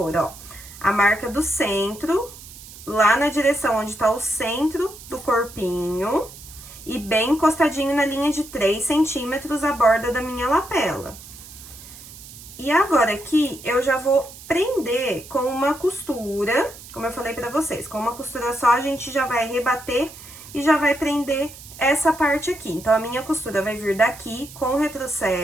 ó, a marca do centro, lá na direção onde tá o centro do corpinho, e bem encostadinho na linha de 3 centímetros a borda da minha lapela. E agora aqui, eu já vou prender com uma costura, como eu falei pra vocês, com uma costura só a gente já vai rebater e já vai prender essa parte aqui. Então, a minha costura vai vir daqui com o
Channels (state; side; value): noise; right; hiss, 17 dB below the sound